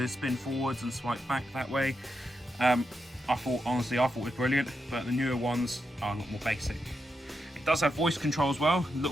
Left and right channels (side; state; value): both; normal; correlation 0.85